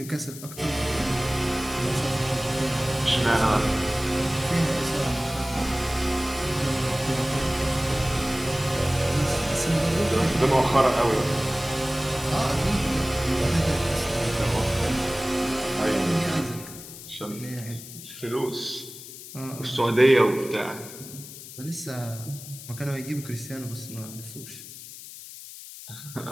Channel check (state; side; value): noise; left; hiss, 14 dB below the sound